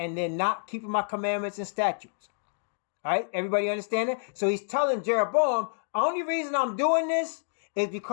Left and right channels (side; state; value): right; silent; digital silence